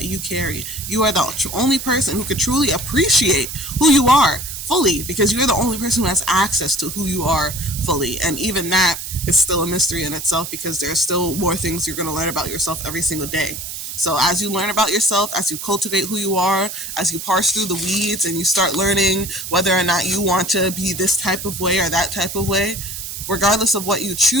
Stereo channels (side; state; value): right; noise; hiss, 8 dB below the sound